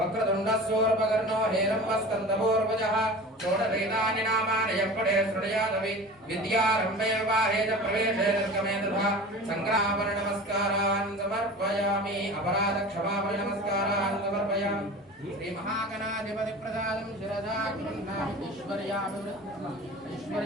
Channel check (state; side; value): normal; both; correlation 0.36